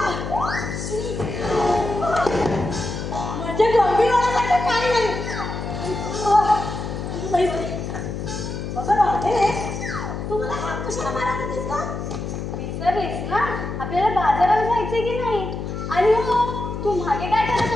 म्हणजे गंभीर होण्यासाठी काही नाही. बघा राहते तू मला हात कशाला मारत होतीस का? विसरलीस ना आपल्याला बाजाराला जायचंय की नाही. आणि हो तू मागे काय करत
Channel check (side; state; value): left; noise; hum, 5 dB below the sound